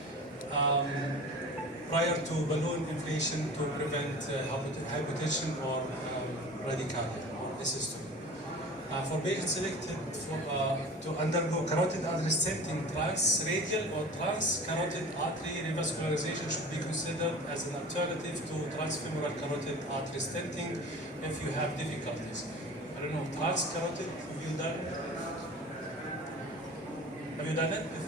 prior to balloon inflation to prevent hypotension or bradycardia or dystocia. For patients selected to undergo carotid artery stenting, transradial or transcarotid artery revascularization should be considered as an alternative to transfemoral carotid artery stenting if you have difficulties. I don't know, transcarotid, have you done it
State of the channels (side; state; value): both; normal; correlation 0.38